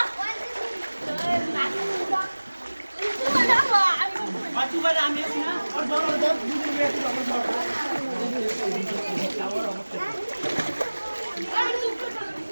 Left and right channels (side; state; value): both; inverted; correlation -1.00